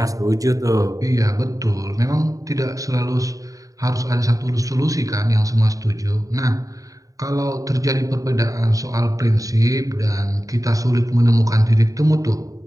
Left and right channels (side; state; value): left; late; 0.16 ms